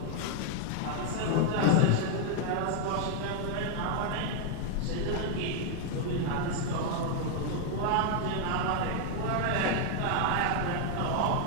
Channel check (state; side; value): different; both; correlation 0.00